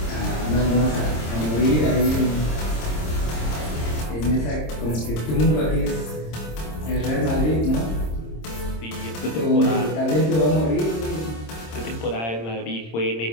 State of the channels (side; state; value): right; late; 26 ms